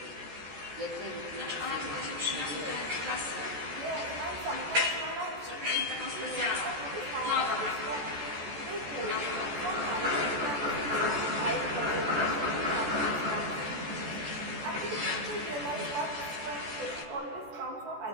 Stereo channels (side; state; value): left; late; 14 ms